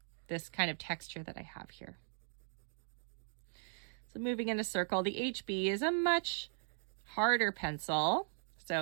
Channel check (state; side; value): silent; left; digital silence